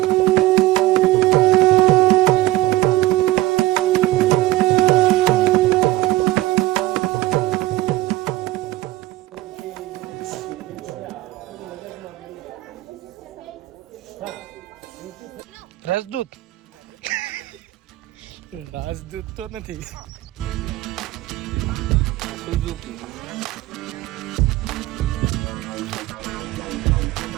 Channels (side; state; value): left; quieter; 17.4 dB